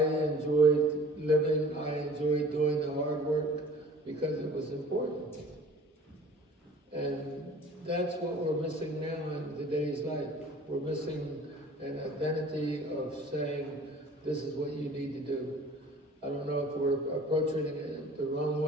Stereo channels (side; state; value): both; normal; correlation 0.47